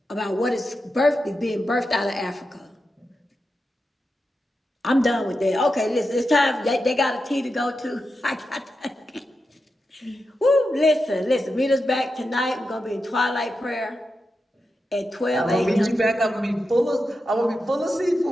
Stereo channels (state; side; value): normal; both; correlation 0.89